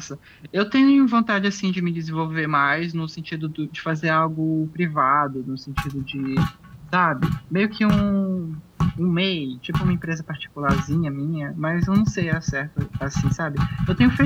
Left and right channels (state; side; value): identical; both; correlation 1.00